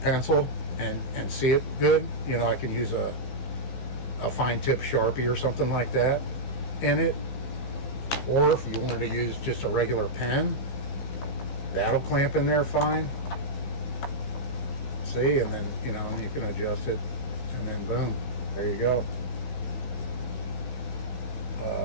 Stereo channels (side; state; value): right; late; 15 ms